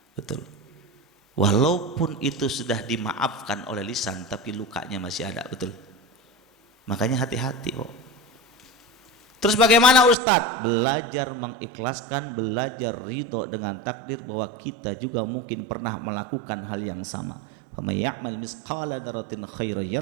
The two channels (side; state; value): left; drops out; at 10.2 s